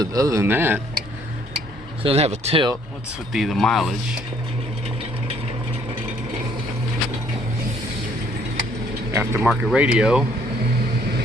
than that, it doesn't have a tilt. What's with the mileage? Aftermarket radio.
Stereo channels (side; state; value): both; normal; correlation 0.63